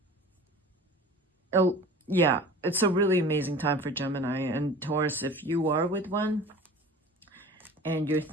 Oh, yeah, it's a really amazing time for Gemini. And Taurus, if you are with one and you're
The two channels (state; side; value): normal; both; correlation 0.40